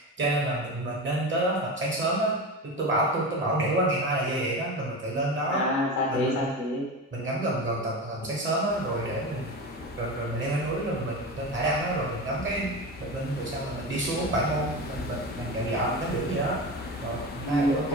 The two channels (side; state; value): both; normal; correlation 0.25